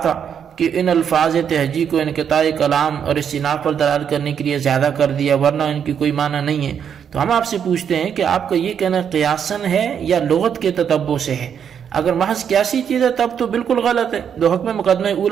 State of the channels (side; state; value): left; quieter; 8.0 dB